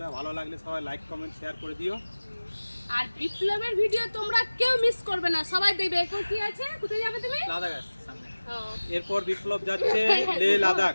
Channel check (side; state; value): both; inverted; correlation -1.00